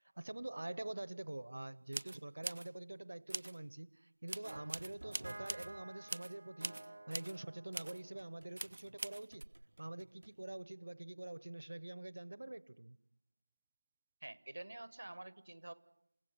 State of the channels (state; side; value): inverted; both; correlation -1.00